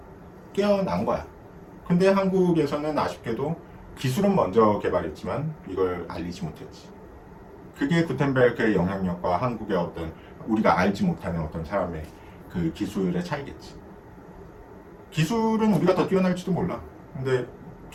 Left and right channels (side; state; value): both; identical; correlation 1.00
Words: 깨어난 거야. 근데 한국에서는 아쉽게도 기술은 먼저 개발했지만 이걸 알리지 못했지. 그게 구텐베르크의 영향력과 한국의 어떤 우리가 알지 못하는 어떤 사람의 그 기술의 차이겠지. 기술은 우리가 더 뛰어날지도 몰라. 근데